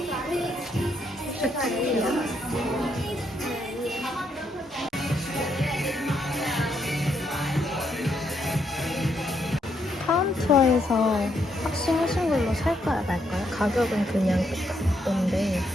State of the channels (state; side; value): normal; both; correlation 0.76